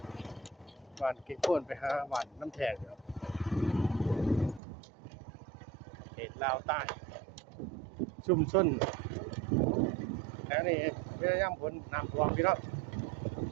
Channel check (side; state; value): left; drops out; at 4.6 s